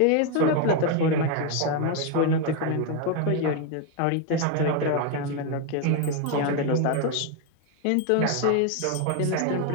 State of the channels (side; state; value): both; different; correlation 0.01